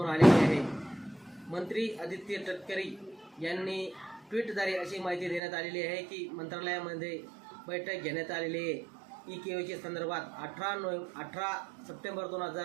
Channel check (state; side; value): drops out; left; at 5.4 s